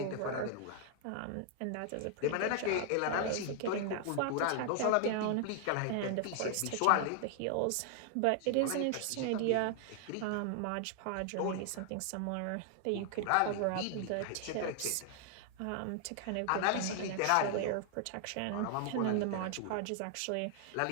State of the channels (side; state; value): both; different; correlation 0.00